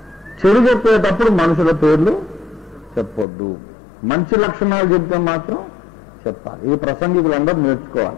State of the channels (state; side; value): drops out; right; at 3.2 s